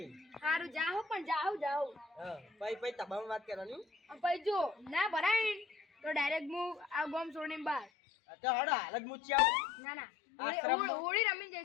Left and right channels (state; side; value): drops out; right; at 7.9 s